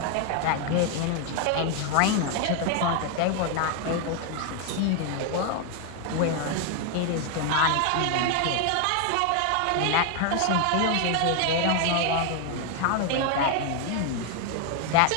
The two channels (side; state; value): both; different; correlation 0.01